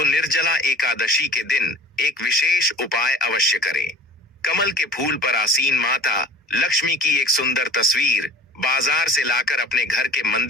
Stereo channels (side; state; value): both; normal; correlation 0.42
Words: निर्जला एकादशी के दिन एक विशेष उपाय अवश्य करें। कमल के फूल पर आसीन माता लक्ष्मी की एक सुंदर तस्वीर बाजार से लाकर अपने घर के